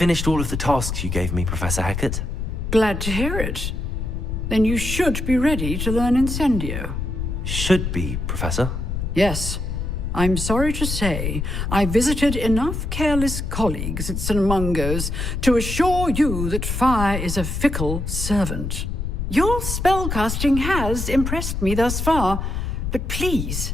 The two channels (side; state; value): left; noise; rumble, 3 dB below the sound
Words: all of the tasks you gave me, Professor Hackett. Glad to hear it. Then you should be ready to learn Incendio. Should be, Professor. Yes. I'm sorry to say, I visited enough careless colleagues at St. Mungo's to assure you that fire is a fickle servant. Your spellcasting has impressed me thus far, but please